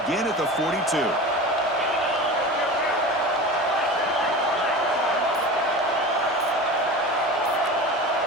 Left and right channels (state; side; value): normal; both; correlation 0.32